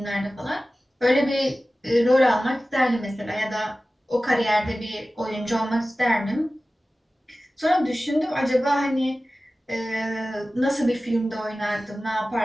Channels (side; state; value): both; normal; correlation 0.96